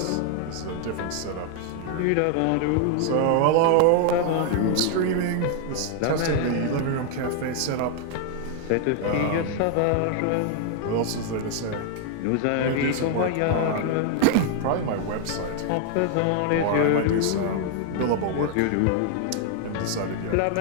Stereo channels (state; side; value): different; both; correlation 0.00